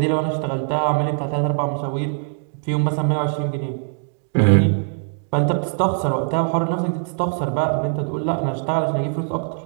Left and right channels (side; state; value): left; silent; 64 dB below the other